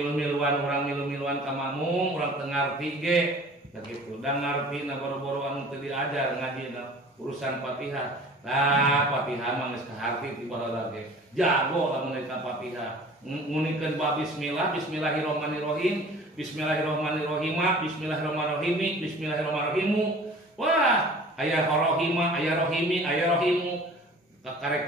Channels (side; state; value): both; normal; correlation 0.45